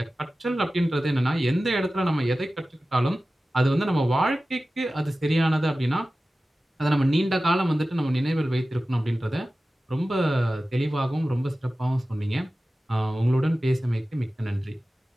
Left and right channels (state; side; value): normal; both; correlation 0.95